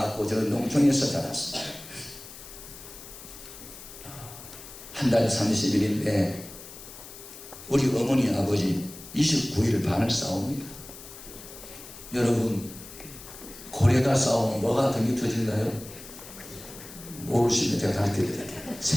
저는 농촌에서 자랐습니다. 한 달 30일인데 우리 어머니 아버지 29일 반을 싸웁니다. 여러분, 고래가 싸우면 뭐가 더 터진가요? 모르시면 제가 가르쳐드릴게요.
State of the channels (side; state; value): left; noise; hiss, 15 dB below the sound